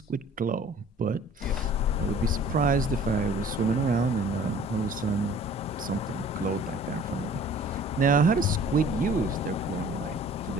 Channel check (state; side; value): normal; both; correlation 0.50